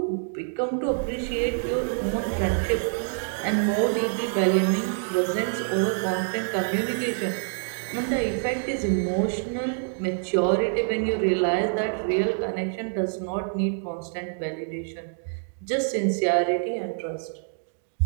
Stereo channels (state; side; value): silent; left; digital silence